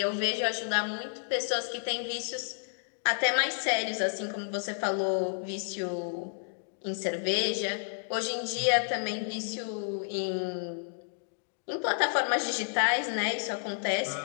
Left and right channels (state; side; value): silent; right; digital silence